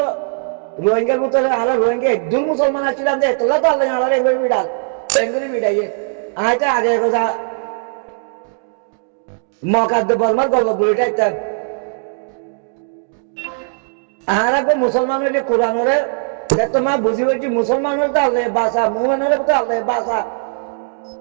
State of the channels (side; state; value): left; silent; digital silence